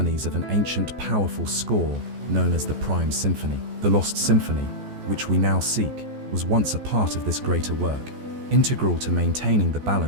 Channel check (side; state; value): left; late; 14 ms